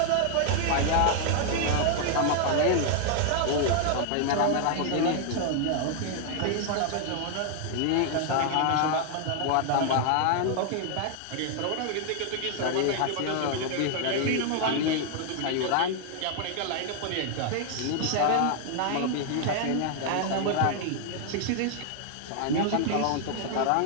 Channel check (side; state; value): both; different; correlation 0.00